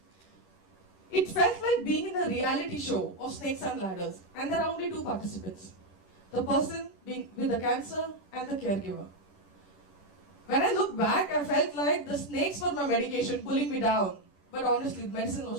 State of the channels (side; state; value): right; late; 10 ms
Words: It felt like being in a reality show of snakes and ladders, and there are only two participants. The person being with the cancer and the caregiver. When I look back, I felt like the snakes were my medication pulling me down. But honestly, medicine